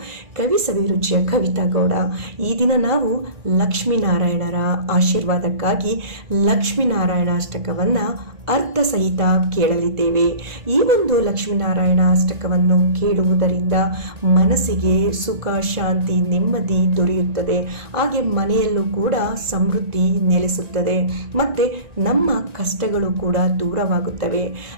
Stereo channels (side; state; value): left; late; 1.5 ms